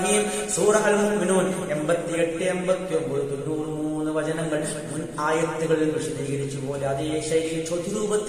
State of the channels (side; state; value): both; identical; correlation 1.00